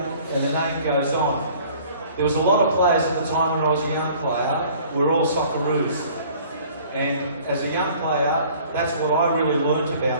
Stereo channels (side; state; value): both; inverted; correlation -0.52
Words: and the name goes on. There was a lot of players at the time when I was a young player, we were all Socceroos. And as a young player, that's what I really learnt